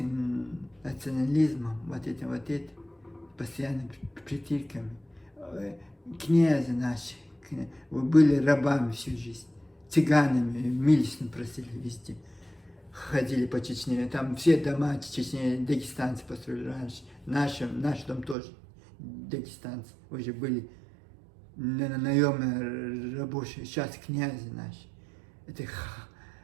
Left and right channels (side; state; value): left; drops out; at 18.4 s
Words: национализмом, вот этим, постоянно притирками, князья наши, вы были рабами всю жизнь, цыганами, милостно просили везде. Ходили по Чечне, там все дома Чечне, дагестанцы построили раньше. Наш дом тоже дагестанцы, уже были наемные рабочие, сейчас князи наши. Это